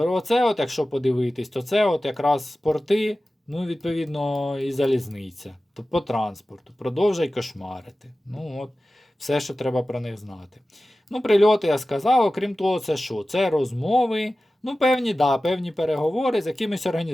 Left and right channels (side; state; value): both; normal; correlation 0.96